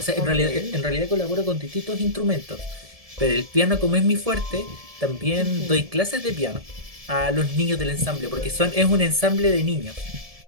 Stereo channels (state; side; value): late; left; 1.7 ms